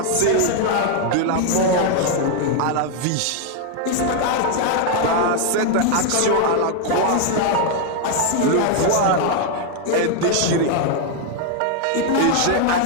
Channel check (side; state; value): both; different; correlation 0.00